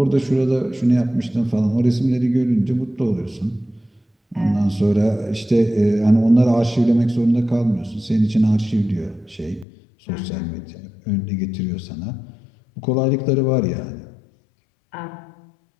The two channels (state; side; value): drops out; right; at 9.7 s